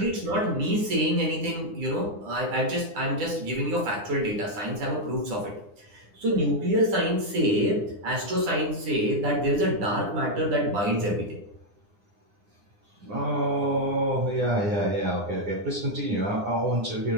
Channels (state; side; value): late; left; 9.9 ms